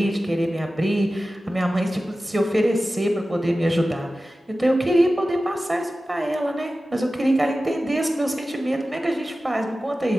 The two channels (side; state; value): both; normal; correlation 0.95